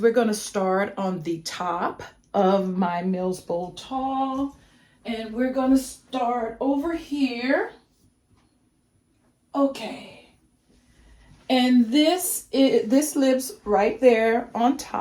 going to start on the top of my Milsbo tall. And we're going to start over here. Okay. And this lives right there on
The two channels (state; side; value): identical; both; correlation 1.00